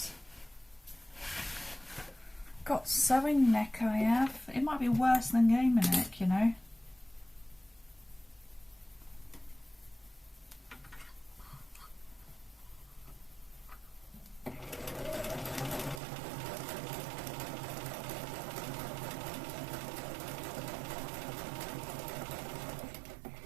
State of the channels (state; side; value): drops out; left; at 16.0 s